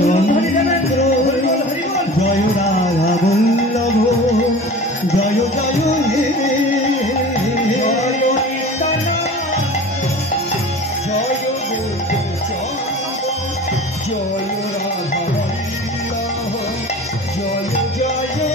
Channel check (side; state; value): both; normal; correlation 0.38